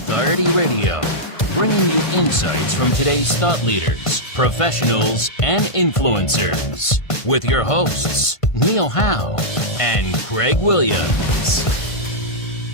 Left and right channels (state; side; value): late; right; 1.5 ms